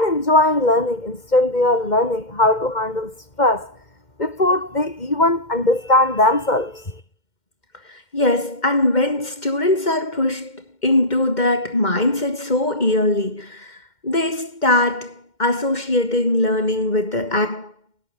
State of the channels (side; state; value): right; late; 2.1 ms